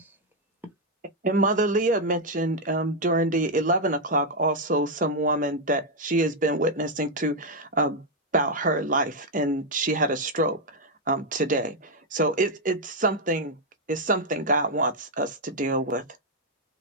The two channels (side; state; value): both; normal; correlation 0.00